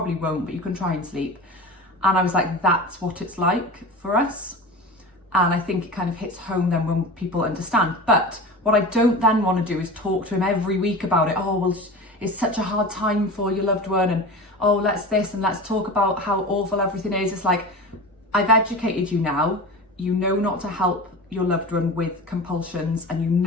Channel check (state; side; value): normal; both; correlation 0.31